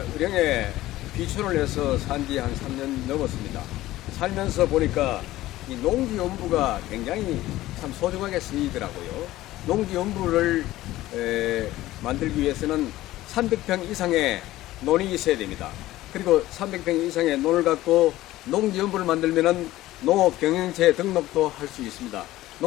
의령에 비촌을 해서 산 지 한 3년 넘었습니다. 살면서 보니까 이 농지연부가 굉장히 참 소중하게 쓰이더라고요. 농지연부를 만들기 위해서는 300평 이상의 논이 있어야 됩니다. 그리고 300평 이상의 논을 갖고 농지연부를 만들면은 농업경영체 등록도 할 수 있습니다.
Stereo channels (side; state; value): right; quieter; 16.1 dB